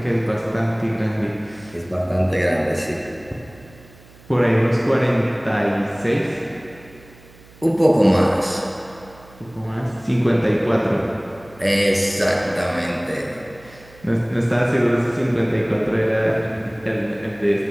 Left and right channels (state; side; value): noise; right; hum, 24 dB below the sound